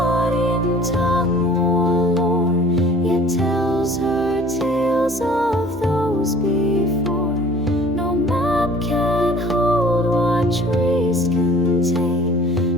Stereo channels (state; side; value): normal; both; correlation 0.49